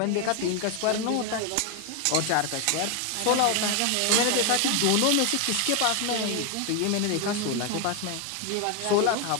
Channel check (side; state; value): both; different; correlation 0.01